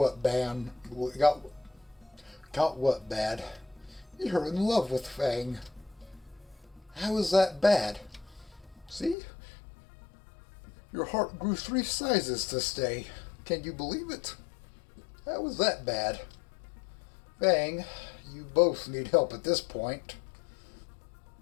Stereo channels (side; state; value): right; drops out; at 9.2 s